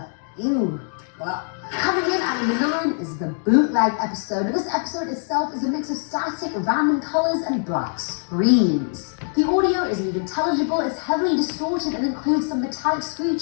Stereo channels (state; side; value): silent; right; 63 dB below the other